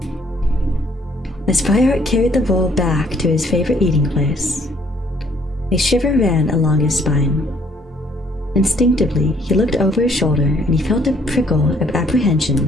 As Fireheart carried the bowl back to his favorite eating place, a shiver ran along his spine. Instinctively, he looked over his shoulder and he felt a prickle of apprehension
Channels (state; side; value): normal; both; correlation 0.63